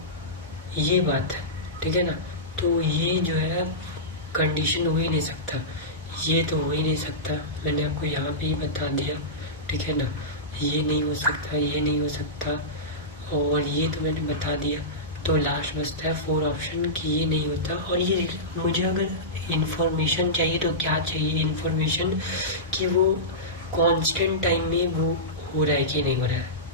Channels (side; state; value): both; normal; correlation -0.17